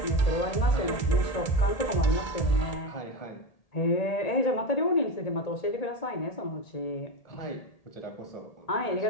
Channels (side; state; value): right; late; 1.8 ms